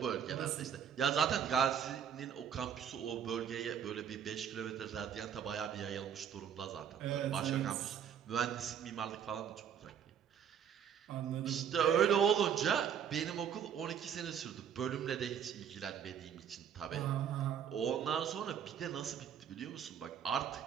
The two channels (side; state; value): left; quieter; 8.4 dB